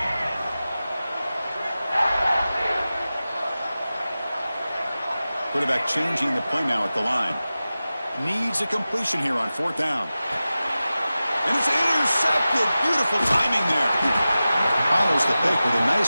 Quarterback changing the play now at the line. Needs a completion here on 4th down. And it's intercepted. Beautiful timing there. Follows the pick with a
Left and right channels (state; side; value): inverted; both; correlation -0.95